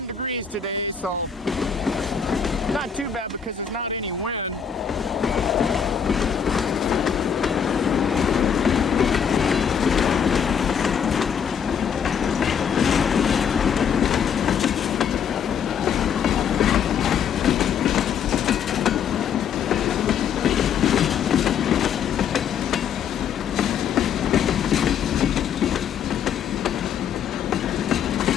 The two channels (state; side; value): quieter; right; 7.6 dB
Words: degrees today, so not too bad because there's not any wind.